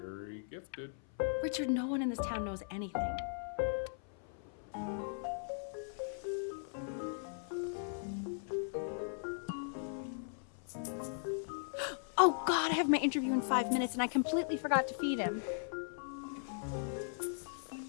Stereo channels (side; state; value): right; silent; 52 dB below the other